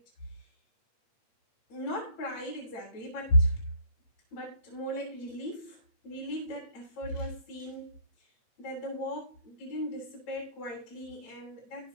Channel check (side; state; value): right; late; 8.9 ms